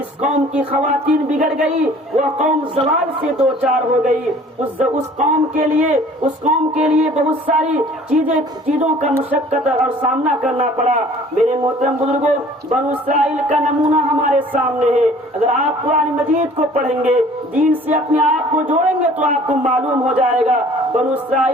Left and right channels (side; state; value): both; normal; correlation 0.51